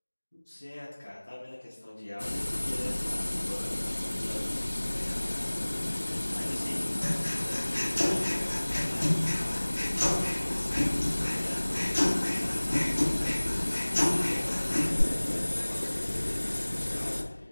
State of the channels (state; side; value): inverted; both; correlation -1.00